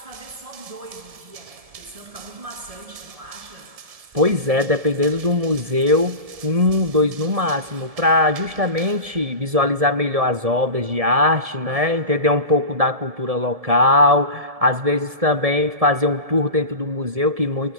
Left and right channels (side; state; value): left; late; 1.7 ms